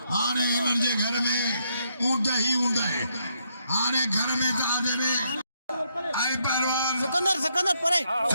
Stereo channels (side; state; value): both; inverted; correlation -0.75